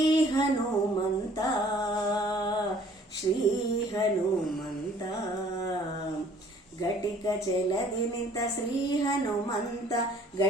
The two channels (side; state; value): both; normal; correlation 0.56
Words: ಹನುಮಂತ, ಶ್ರೀ ಹನುಮಂತ. ಘಟಿಕ ಚಲದಿ ನಿಂತ ಶ್ರೀ ಹನುಮಂತ,